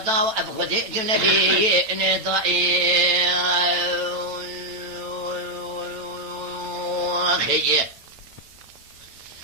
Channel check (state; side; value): late; left; 9.0 ms